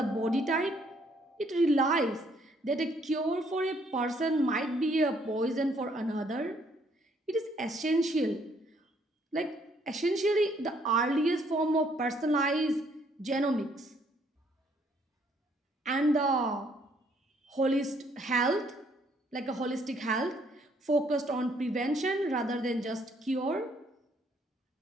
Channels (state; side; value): normal; both; correlation 0.67